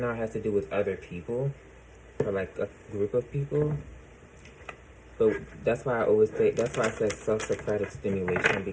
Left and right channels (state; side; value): identical; both; correlation 1.00